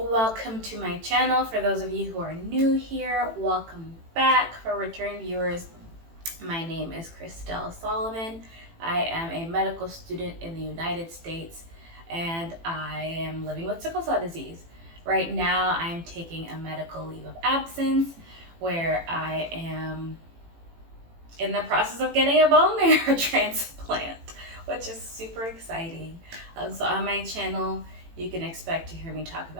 to my channel. For those of you who are new here, welcome back. For return viewers, my name is Christelle Salomon. I am a medical student in the United States and I am living with sickle cell disease. Right now I'm taking a medical leave of absence where I am in the process of getting a bone marrow transplant, which is super exciting. So on my channel, you can expect to hear me talk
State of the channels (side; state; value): left; late; 18 ms